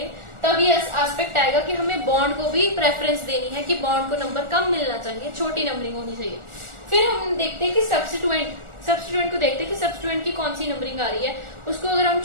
तब ये एस्पेक्ट आएगा कि हमें बॉन्ड को भी प्रेफरेंस देनी है, कि बॉन्ड को नंबर कम मिलना चाहिए, छोटी नंबरिंग होनी चाहिए। फिर हम देखते हैं कि सब्स्टिट्यूएंट को देखते हैं कि सब्स्टिट्यूएंट की कौन सी नंबरिंग आ रही है। उसको अगर हम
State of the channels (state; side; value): late; left; 1.4 ms